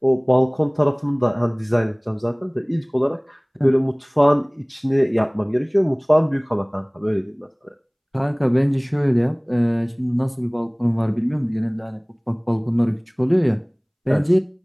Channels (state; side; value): identical; both; correlation 1.00